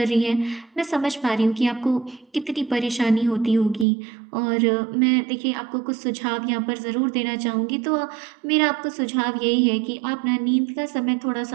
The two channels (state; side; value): drops out; left; at 3.9 s